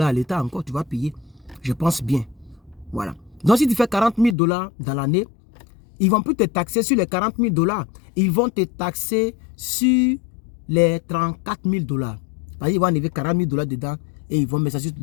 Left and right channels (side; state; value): right; drops out; at 4.4 s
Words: l'État encore, tu vas payer. Je pense bien. Voilà. Donc, si tu fais 40 000 $ dans l'année, ils ne vont plus te taxer sur les 40 000 $. Ils vont te taxer sur les 34 000 $. Ils vont enlever 40 000 $ dedans et ils vont mettre ça sur